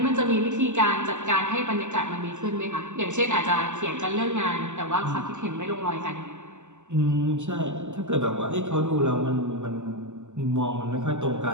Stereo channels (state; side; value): late; left; 0.84 ms